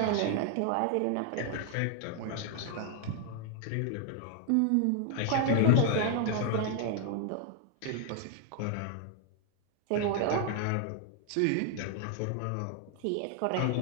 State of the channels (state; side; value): different; both; correlation 0.00